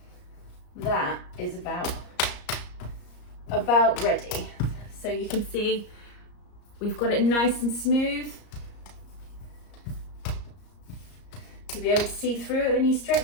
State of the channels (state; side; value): late; right; 34 ms